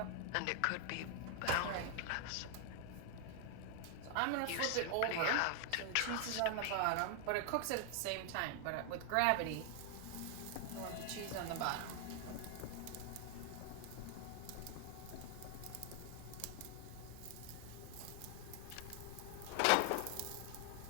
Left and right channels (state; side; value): different; both; correlation 0.00